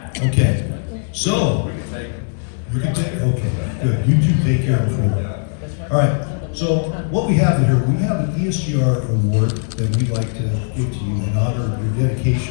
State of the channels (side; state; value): right; silent; digital silence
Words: Okay. So, you can take, okay, good. You two take care of him. All right. So, what we have here, we have an ESGR award that we'd like to give to you in honor of your